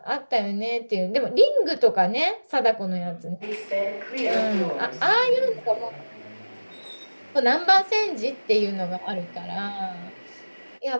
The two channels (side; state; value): both; inverted; correlation -1.00